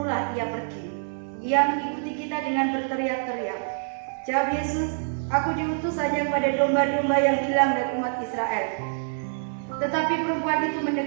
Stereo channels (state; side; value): silent; left; 59 dB below the other